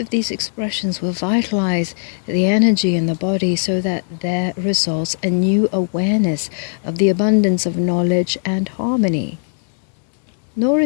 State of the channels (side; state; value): right; silent; 67 dB below the other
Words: these expressions will vitalize the energy in the body so that there results a new awareness of the abundance of knowledge and harmony. Nor